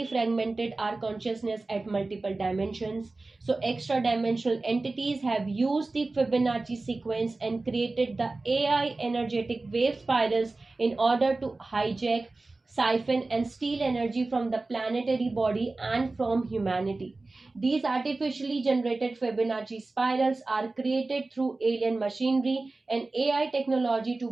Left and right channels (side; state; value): left; quieter; 3.3 dB